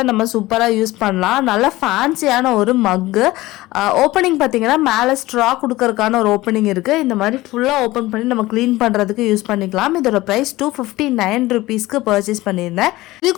நம்ம சூப்பராக யூஸ் பண்ணலாம். நல்ல ஃபேன்சியான ஒரு மக்கு. ஓப்பனிங் பார்த்தீங்கன்னா மேலே ஸ்ட்ரா கொடுக்கறதுக்கான ஒரு ஓப்பனிங் இருக்கு. இந்த மாதிரி ஃபுல்லாக ஓப்பன் பண்ணி நம்ம க்ளீன் பண்ணுறதுக்கு யூஸ் பண்ணிக்கலாம். இதோட ப்ரைஸ் 259 ருபீஸ்க்கு பர்ச்சேஸ் பண்ணியிருந்தேன். இது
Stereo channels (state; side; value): quieter; right; 18.4 dB